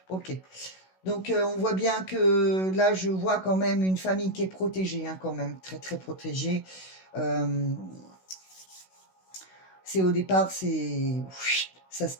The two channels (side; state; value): right; late; 16 ms